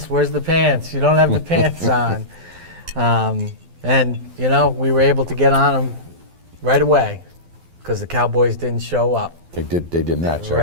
where's the pants? You don't have the pants on. And we were able to get on them right away because the Cowboys didn't show up. They did not show up.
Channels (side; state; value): left; late; 12 ms